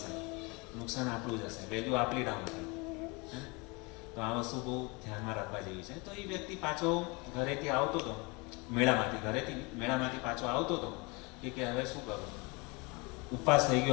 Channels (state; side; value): quieter; right; 27.9 dB